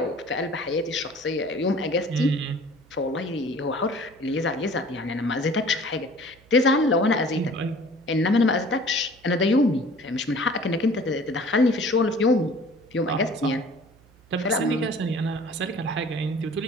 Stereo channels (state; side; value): noise; right; hum, 29 dB below the sound